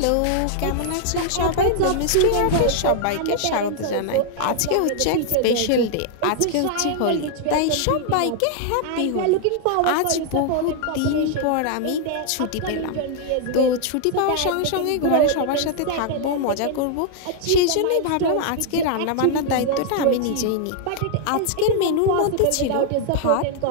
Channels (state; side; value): different; both; correlation 0.00